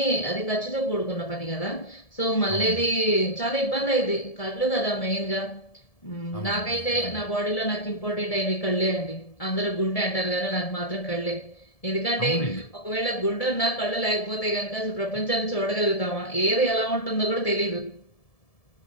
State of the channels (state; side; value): late; right; 1.7 ms